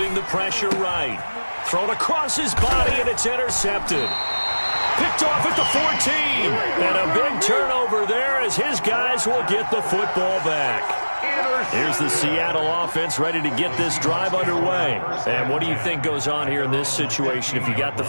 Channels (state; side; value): inverted; both; correlation -1.00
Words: the pressure right. Thrown across his body, and it's intercepted. Picked off at the 14. And a big turnover there as his guys will get the football back. Here's the Seattle offense ready to get this drive underway. And what do you think goes on here in this situation? If you got the